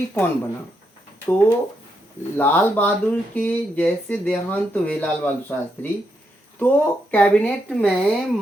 कौन बना? तो लाल बहादुर के जैसे देहांत हुए लाल बहादुर शास्त्री, तो कैबिनेट में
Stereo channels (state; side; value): normal; both; correlation 0.80